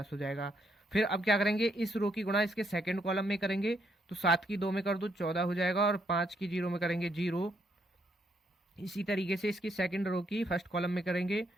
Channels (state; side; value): normal; both; correlation 0.74